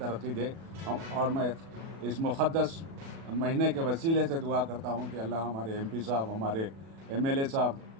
دے، اور میں اس مقدس مہینے کے وسیلے سے دعا کرتا ہوں کہ اللہ ہمارے ایم پی صاحب، ہمارے ایم ایل اے صاحب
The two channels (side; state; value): left; late; 36 ms